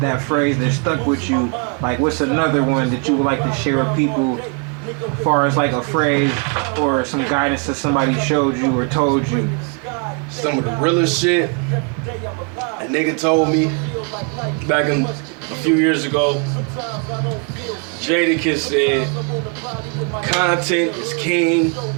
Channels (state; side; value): quieter; left; 33.8 dB